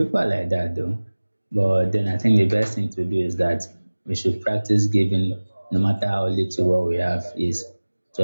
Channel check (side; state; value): both; inverted; correlation -1.00